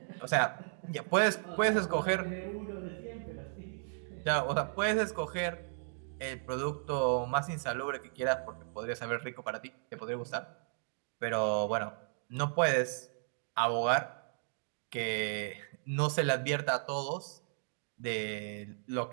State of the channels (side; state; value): left; silent; digital silence